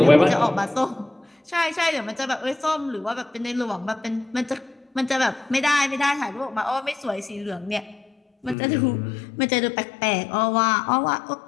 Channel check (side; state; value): right; drops out; at 8.6 s